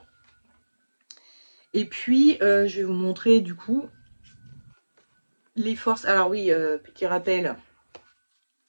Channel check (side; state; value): both; inverted; correlation -1.00